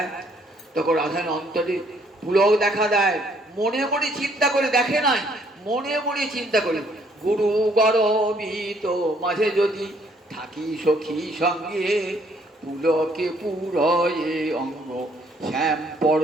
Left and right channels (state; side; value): normal; both; correlation 0.65